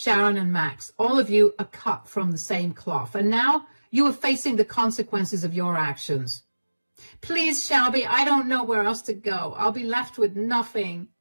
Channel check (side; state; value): both; inverted; correlation -1.00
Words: and Max, all of you are cut from the same cloth, and now you are facing the consequences of your actions. Please, Shelby, I don't know where else to go. I'll be left with nothing.